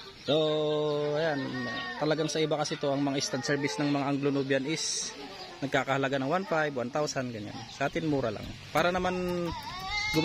So, ayan, talagang sa iba kasi to, ang mga stud service ng mga Anglo-Nubian is nagkakahalaga ng 1,500, 1,000, ganyan. Sa atin, mura lang. Para naman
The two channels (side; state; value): both; identical; correlation 1.00